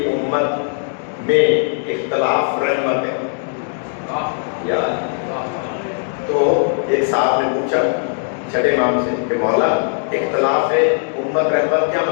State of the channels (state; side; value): silent; right; digital silence